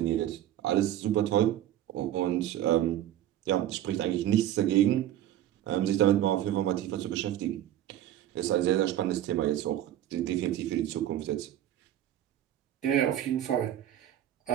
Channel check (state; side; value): quieter; left; 12.2 dB